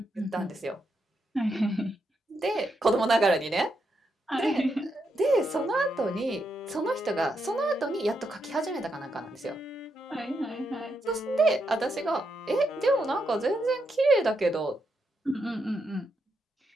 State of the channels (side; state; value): both; normal; correlation 0.82